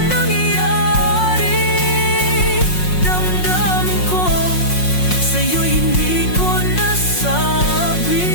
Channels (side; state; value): right; late; 5.5 ms